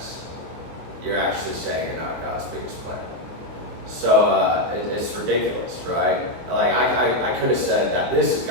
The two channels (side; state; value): left; late; 24 ms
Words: You're actually saying you're not God's biggest plan. So it's ridiculous, right? Like I could have said that this is